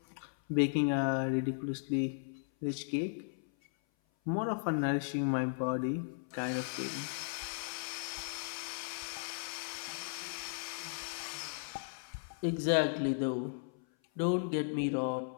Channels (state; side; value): silent; right; 54 dB below the other